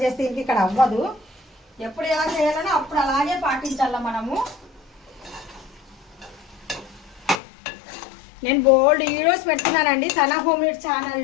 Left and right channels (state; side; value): drops out; right; at 7.4 s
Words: ఇంక ఇక్కడ అవ్వదు. ఎప్పుడు ఎలా చేయాలనో అప్పుడు అలాగే పాటించాల మనము. నేను బోల్డ్ వీడియోస్ పెడుతున్నానండి సనా హోమ్ మేడ్